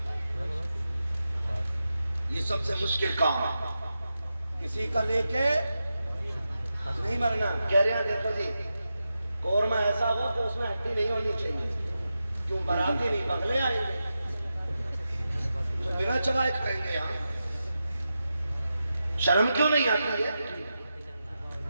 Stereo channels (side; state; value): both; inverted; correlation -0.90